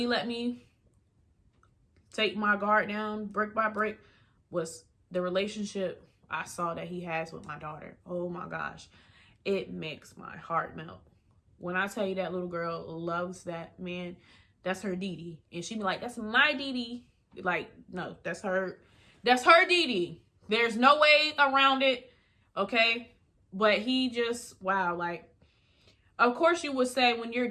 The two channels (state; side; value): identical; both; correlation 1.00